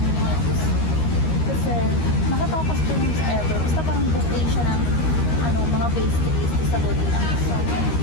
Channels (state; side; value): late; right; 13 ms